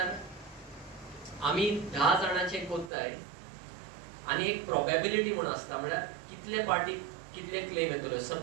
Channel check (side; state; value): left; drops out; at 2.9 s